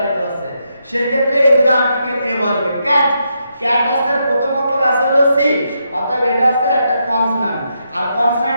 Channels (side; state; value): both; inverted; correlation -0.81